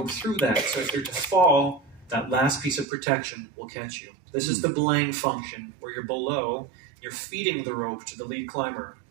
through that. So if you're to fall, that last piece of protection will catch you. This is the belaying function, where you're below, you're feeding the rope to the lead climber.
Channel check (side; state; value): left; drops out; at 2.9 s